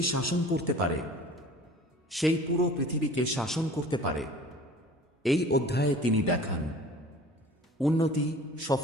শাসন করতে পারে সেই পুরো পৃথিবীকে শাসন করতে পারে। এই অধ্যায়ে তিনি দেখান উন্নতি,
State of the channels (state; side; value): normal; both; correlation 0.45